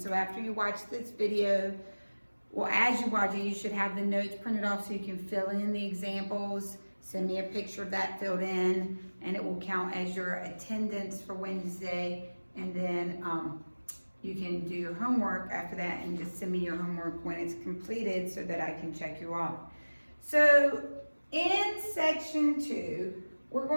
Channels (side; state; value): both; inverted; correlation -1.00